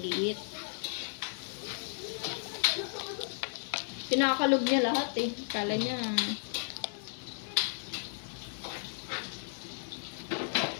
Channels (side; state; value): right; silent; 55 dB below the other